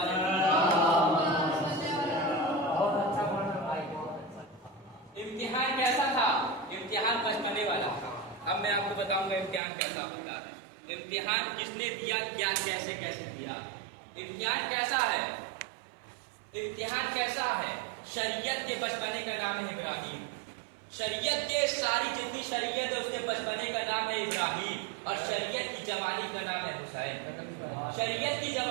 امتحان کیسا تھا؟ امتحان بچپنے والا تھا. اب میں آپ کو بتاؤں گا امتحان کیسا ہوتا ہے. امتحان کس نے دیا, کیا کیسے دیا. امتحان کیسا ہے؟ امتحان کیسا ہے؟ شریعت کے بچپنے کا نام ہے ابراہیم. شریعت کے ساری جتنی شریعت ہے اس کے بچپنے کا نام ہے ابراہیم, اور شریعت کی جوانی کا نام ہے حسین. شریعت کی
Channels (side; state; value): left; drops out; at 9.6 s